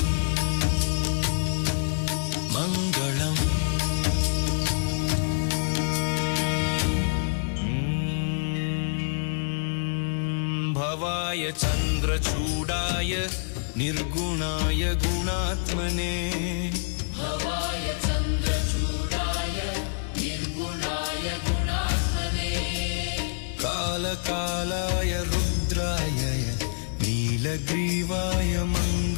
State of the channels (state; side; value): silent; right; digital silence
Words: चन्द्रचूडाय निर्गुणाय गुणात्मने भवाय चन्द्रचूडाय निर्गुणाय गुणात्मने कालकालाय रुद्राय नीलग्रीवाय